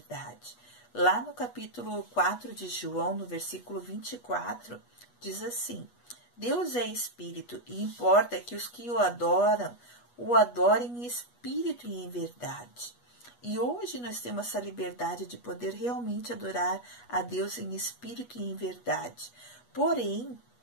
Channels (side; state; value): right; late; 8.3 ms